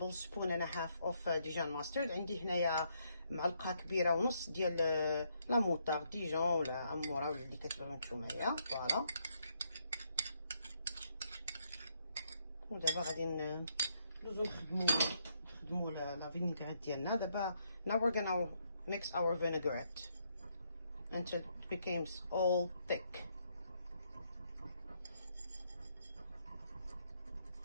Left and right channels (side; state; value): both; inverted; correlation -0.74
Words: and a half of Dijon mustard. عندي هنايا معلقه كبيره ونص ديال لا موطار ديجون ولا اموره ولا اللي كتبغيو نتومايا. فوالا. ودابا غادي ندوزو نخدمو لا فينيغريت ديالنا. دابا now we're gonna mix our vinaigrette until it becomes all thick.